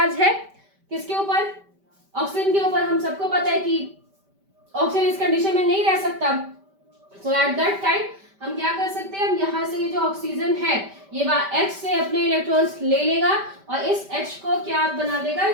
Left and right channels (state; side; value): late; left; 5.1 ms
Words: है किसके ऊपर, ऑक्सीजन के ऊपर। हम सबको पता है कि ऑक्सीजन इस कंडीशन में नहीं रह सकता, सो एट दैट टाइम हम क्या कर सकते हैं, हम यहाँ से ये जो ऑक्सीजन है ये H से अपने इलेक्ट्रॉन्स ले लेगा और इस H को क्या बना देगा,